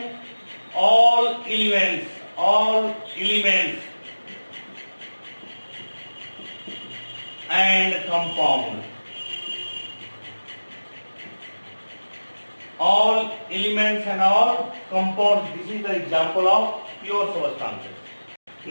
all elements and compound. All elements and all compounds. This is the example of pure substances.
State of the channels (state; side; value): inverted; both; correlation -1.00